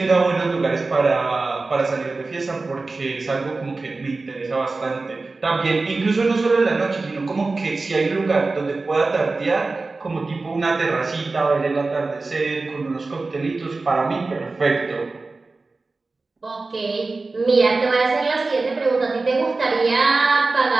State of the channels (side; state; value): left; quieter; 3.6 dB